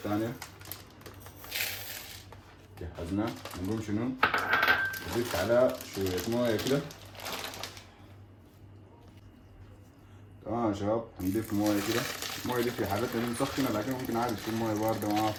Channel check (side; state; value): both; identical; correlation 1.00